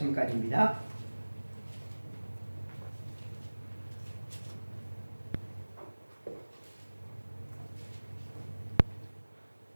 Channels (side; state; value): both; inverted; correlation -1.00